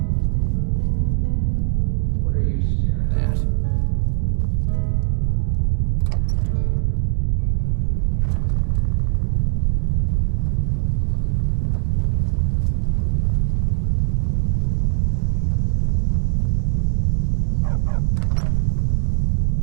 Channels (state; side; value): silent; left; digital silence